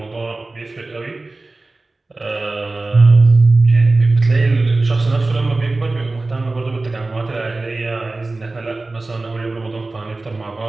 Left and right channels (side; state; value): left; quieter; 3.2 dB